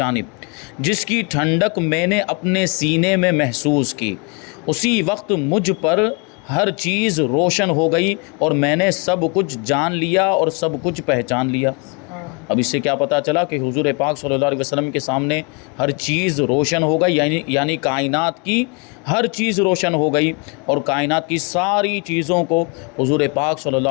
جس کی ٹھنڈک میں نے اپنے سینے میں محسوس کی۔ اسی وقت مجھ پر ہر چیز روشن ہو گئی اور میں نے سب کچھ جان لیا اور سب کچھ پہچان لیا۔ اب اس سے کیا پتہ چلا کہ حضور پاک صلی اللہ علیہ وسلم کے سامنے ہر چیز روشن ہو گئی، یعنی کائنات کی ہر چیز روشن ہو گئی اور کائنات کی ساری چیزوں کو حضور پاک صلی اللہ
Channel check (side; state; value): right; quieter; 31.9 dB